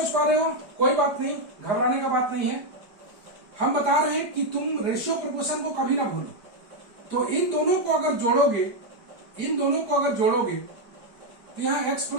पा रहे हो, कोई बात नहीं, घबराने का बात नहीं है। हम बता रहे हैं कि तुम रेशियो प्रोपोर्शन को कभी ना भूलो। तो इन दोनों को अगर जोड़ोगे, तो यहाँ x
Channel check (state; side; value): late; left; 4.9 ms